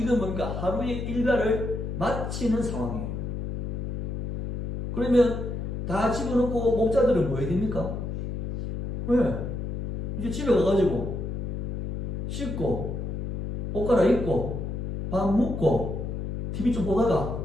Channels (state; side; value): noise; left; hum, 4 dB below the sound